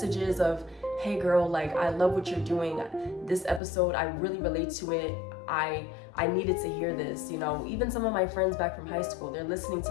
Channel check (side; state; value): right; drops out; at 3.6 s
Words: of, hey girl, like, I love what you're doing. This episode, I really relate to it. I needed to hear this, you know. Even some of my friends back from high school, they're listening to